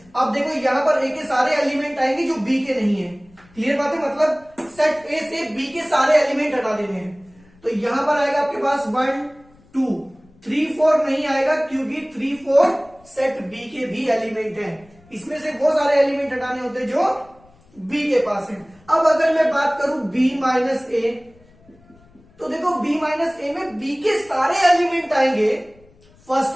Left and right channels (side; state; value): left; noise; rumble, 29 dB below the sound